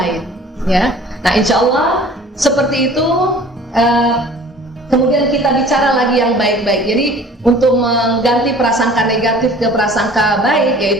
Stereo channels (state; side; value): normal; both; correlation 0.48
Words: Nah, insya Allah seperti itu. Kemudian kita bicara lagi yang baik-baik. Jadi untuk mengganti prasangka negatif ke prasangka baik,